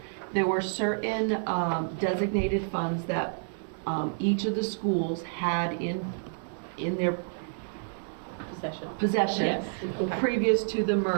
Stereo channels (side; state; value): left; silent; digital silence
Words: there were certain designated funds that each of the schools had in their possession Yes. previous to the